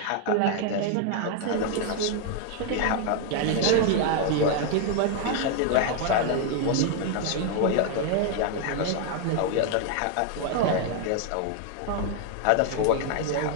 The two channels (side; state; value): both; different; correlation 0.00